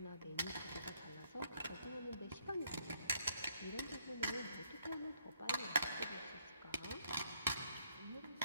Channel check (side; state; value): both; inverted; correlation -0.70